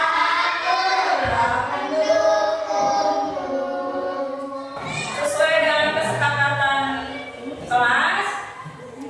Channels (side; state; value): both; identical; correlation 1.00